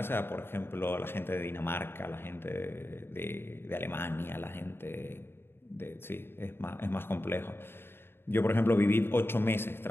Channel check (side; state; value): right; late; 0.11 ms